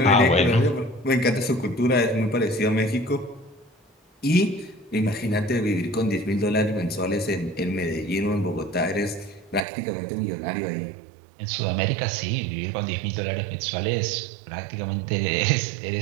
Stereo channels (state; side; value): drops out; left; at 9.6 s